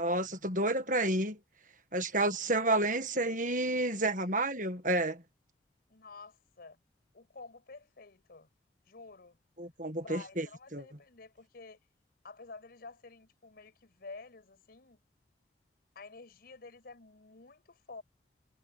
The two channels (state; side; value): normal; both; correlation 0.07